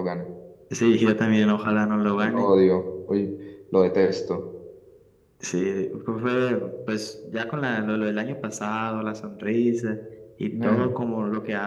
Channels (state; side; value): identical; both; correlation 1.00